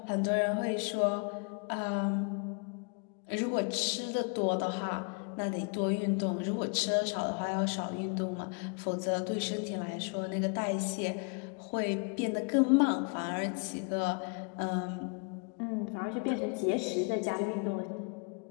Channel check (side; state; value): right; quieter; 36.1 dB